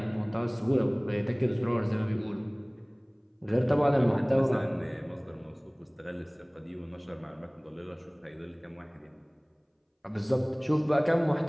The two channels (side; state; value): both; identical; correlation 1.00